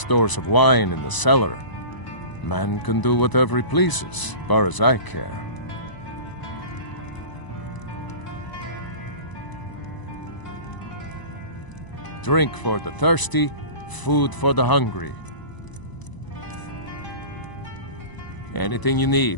of wine in the cellar. Man can do whatever he pleases, as far as I care. Drink for the thirsty, food for the hungry. Anything you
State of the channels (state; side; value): late; right; 1.0 ms